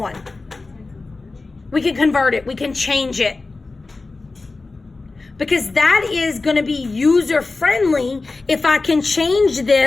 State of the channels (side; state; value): right; quieter; 3.6 dB